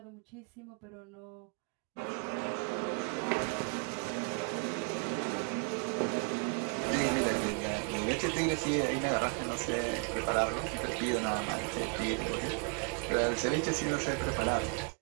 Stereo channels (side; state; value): left; quieter; 37.1 dB